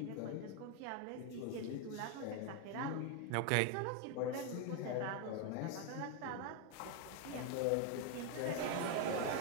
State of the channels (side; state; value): both; different; correlation 0.01